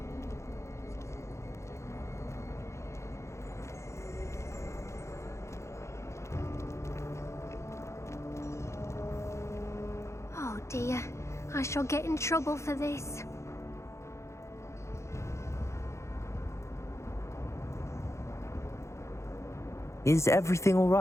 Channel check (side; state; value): right; late; 0.14 ms